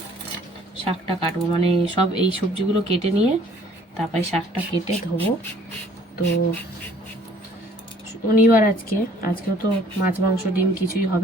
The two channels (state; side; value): normal; both; correlation 0.57